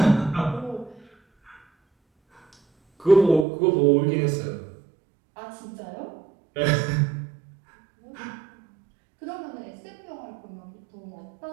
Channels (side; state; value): left; drops out; at 3.5 s